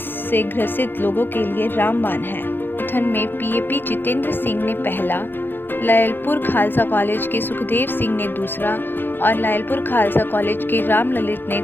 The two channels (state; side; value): late; right; 0.099 ms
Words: से ग्रसित लोगों के लिए रामबाण है। मैराथन में PAP जितेंद्र सिंह ने पहला, लायलपुर खालसा कॉलेज के सुखदेव सिंह ने दूसरा और लायलपुर खालसा कॉलेज के राम ललित ने